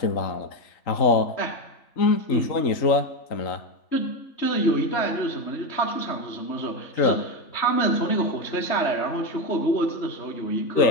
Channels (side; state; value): right; late; 3.8 ms